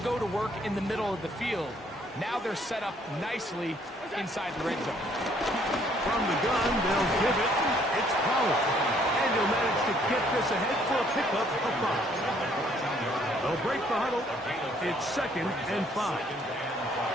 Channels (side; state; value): both; normal; correlation 0.64